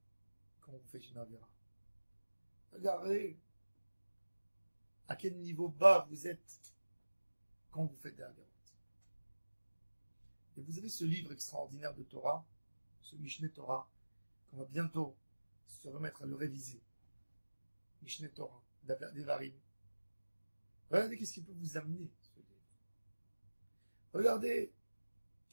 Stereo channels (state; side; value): inverted; both; correlation -1.00